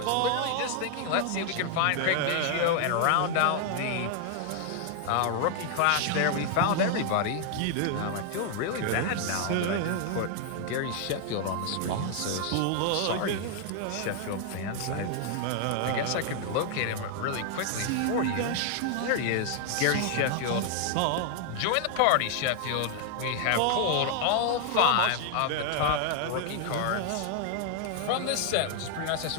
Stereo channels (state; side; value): different; both; correlation 0.00